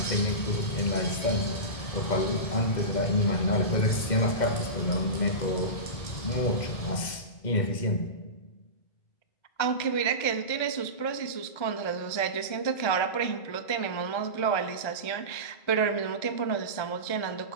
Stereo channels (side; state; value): right; late; 2.1 ms